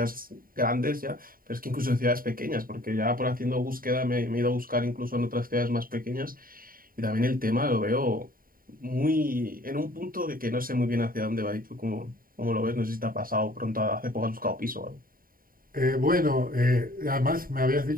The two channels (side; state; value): left; late; 0.41 ms